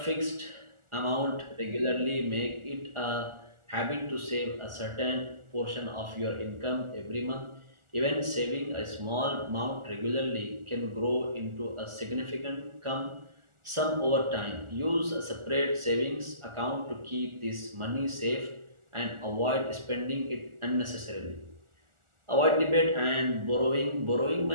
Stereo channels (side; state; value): left; late; 1.4 ms